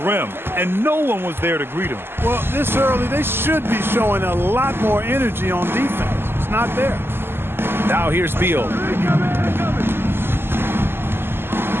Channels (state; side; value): late; left; 0.11 ms